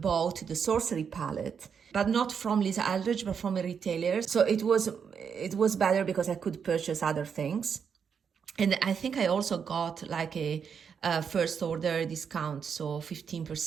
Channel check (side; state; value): left; quieter; 6.8 dB